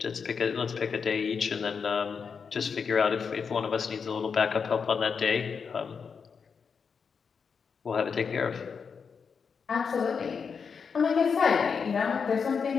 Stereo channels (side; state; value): right; quieter; 6.0 dB